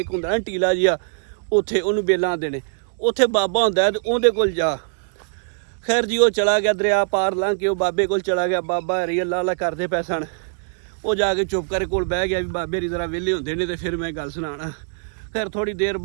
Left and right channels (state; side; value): silent; left; digital silence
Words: ਹੁੰਦਾ ਨਾ ਟੀਲਾ ਜਿਹਾ, ਉੱਥੇ ਉਹਨੂੰ ਬੇਲਾ ਆਉਂਦੇ ਨੇ। ਉੱਥੇ ਬਾਬਾ ਹੁੰਦਾ ਤੇ ਉਹਦੇ ਕੋਲ ਜਾ। ਖੈਰ ਜੀ ਉਹ ਚਲਾ ਗਿਆ ਦਰਿਆ ਪਾਰ ਲੰਘ ਕੇ, ਉਹ ਬਾਬੇ ਕੋਲ ਚਲਾ ਗਿਆ। ਬਾਬਾ ਹਰੀ ਅੱਲਾ ਅੱਲਾ ਕਰਦੇ ਪਏ ਸਨ। ਉਹ ਜਾ ਕੇ ਚੁੱਪ ਕਰਕੇ ਕੋਲ ਬਹਿ ਗਿਆ ਵੀ ਬਾਬੇ ਦੀ ਜ਼ਰਾ ਵਿਹਲੇ ਹੁੰਦੇ ਨੇ ਤੇ ਫਿਰ ਮੈਂ ਗੱਲ ਸੁਣਾਉਣਾ। ਖੈਰ ਥੋੜ੍ਹੀ ਦੇਰ